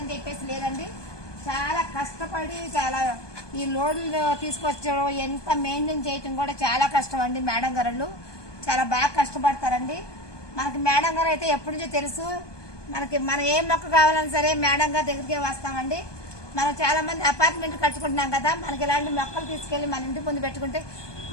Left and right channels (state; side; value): late; right; 1.2 ms